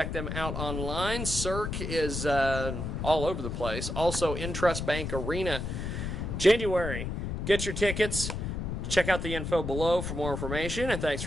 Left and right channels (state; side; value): noise; left; rumble, 4 dB below the sound